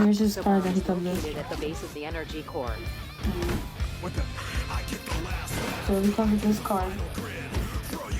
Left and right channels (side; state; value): both; identical; correlation 1.00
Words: here's his card that he comes with. At the base of the energy core. So he comes with this card.